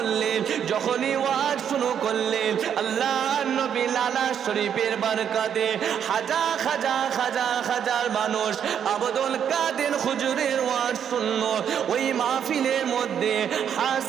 যখনই ওয়াজ শুরু করলেন, আল্লাহ নবী লালা শরীফের বরকতে হাজার হাজার হাজার হাজার মানুষ আব্দুল কাদের হুজুরের ওয়াজ শুনলো, ওই মাহফিলের মধ্যে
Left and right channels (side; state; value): left; quieter; 8.5 dB